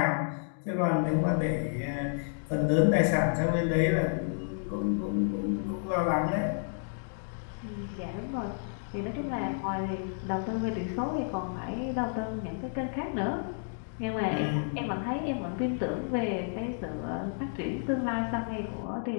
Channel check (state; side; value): silent; right; digital silence